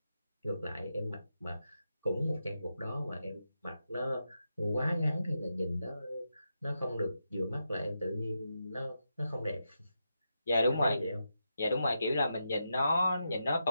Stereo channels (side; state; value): both; inverted; correlation -0.86